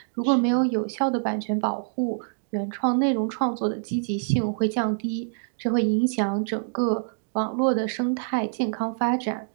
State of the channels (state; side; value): silent; left; digital silence